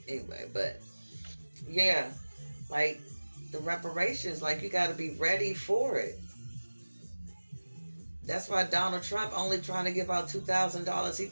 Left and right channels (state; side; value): inverted; both; correlation -1.00